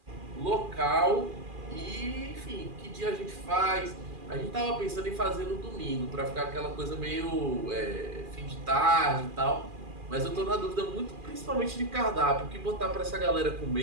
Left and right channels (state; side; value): late; left; 2.4 ms